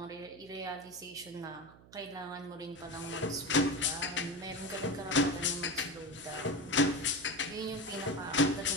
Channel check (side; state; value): right; noise; hum, 22 dB below the sound